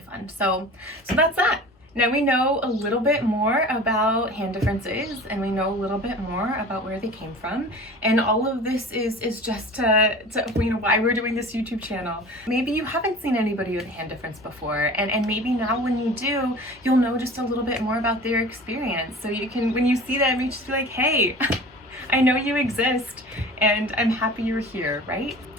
fun. So that's that. Now we know a little bit more about hand differences, and we know a little bit more about where they came from, and all of this is just to you know, why we're doing this YouTube channel. Maybe you haven't seen anybody with a hand difference before, and maybe now when you do, you'll know just a little bit more about their experience, so you can, when you see them, you just be like, hey, I know you exist, and I'm happy you're here, right?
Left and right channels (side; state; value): both; normal; correlation 0.39